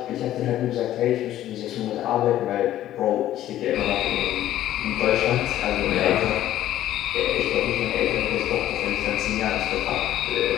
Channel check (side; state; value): right; quieter; 13.0 dB